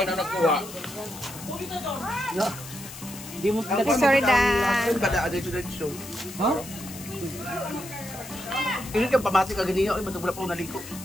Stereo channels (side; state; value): left; noise; hiss, 14 dB below the sound